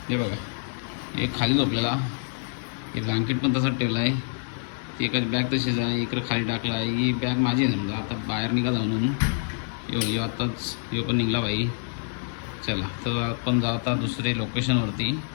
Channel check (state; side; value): silent; right; digital silence